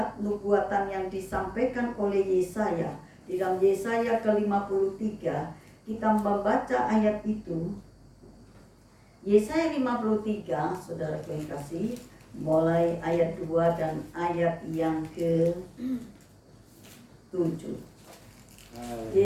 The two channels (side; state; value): both; identical; correlation 1.00